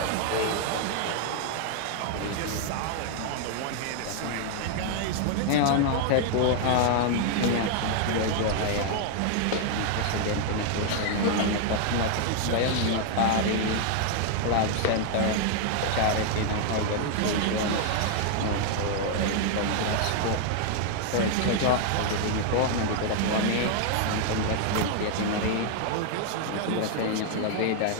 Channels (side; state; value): both; different; correlation 0.00